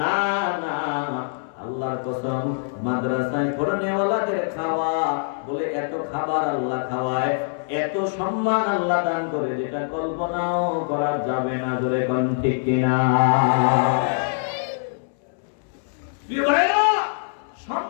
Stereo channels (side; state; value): right; silent; 63 dB below the other